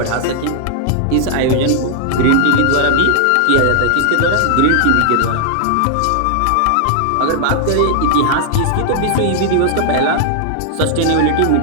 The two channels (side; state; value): both; different; correlation 0.00